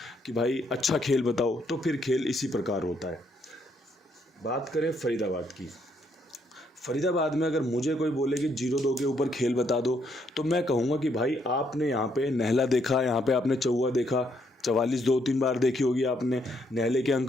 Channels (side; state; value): both; normal; correlation 0.73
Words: कि भाई अच्छा खेल बताओ, तो फिर खेल इसी प्रकार होता है। बात करें फरीदाबाद की। फरीदाबाद में अगर मुझे कोई बोले कि 0-2 के ऊपर खेल बता दो, तो मैं कहूँगा कि भाई आपने यहाँ पे नहला देखा, यहाँ पे आपने चौवा देखा, 44 2-3 बार देखी होगी आपने। नहले के